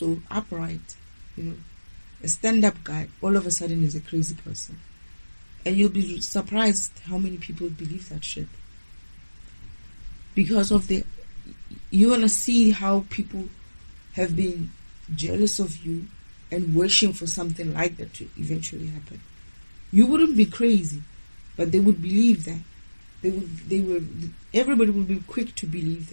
upright, a stand-up guy, all of a sudden is a crazy person. And you'll be surprised how many people believe that shit. Because of you want to see how people have been jealous of you and wishing for something like that to eventually happen. You wouldn't be crazy, but they would believe that. Everybody would be quick to believe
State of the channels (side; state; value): both; inverted; correlation -1.00